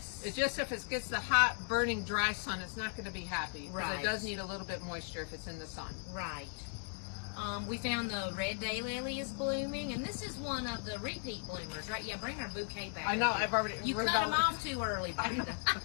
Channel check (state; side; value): silent; right; 53 dB below the other